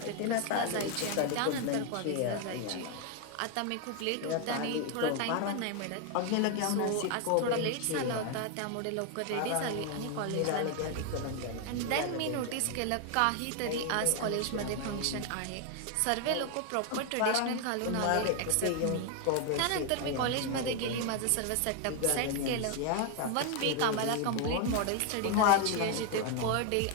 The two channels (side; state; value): both; different; correlation 0.01